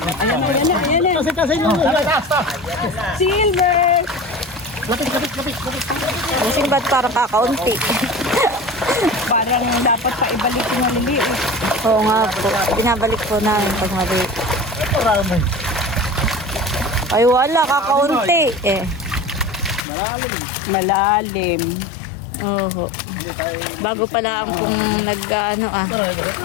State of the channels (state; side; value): drops out; right; at 19.8 s